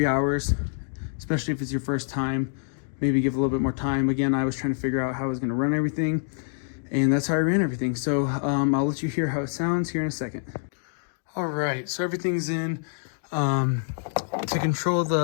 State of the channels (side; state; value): right; silent; digital silence